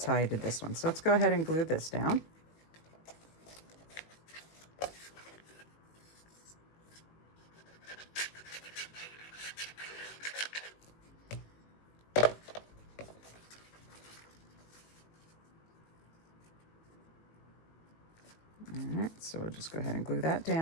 how I did this one. So let's go ahead and glue this down. All right, so we'll just go ahead and glue that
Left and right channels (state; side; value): late; right; 19 ms